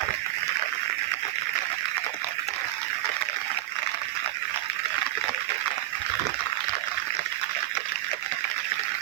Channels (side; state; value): left; quieter; 15.6 dB